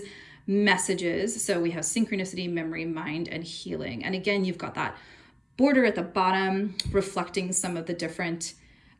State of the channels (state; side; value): identical; both; correlation 1.00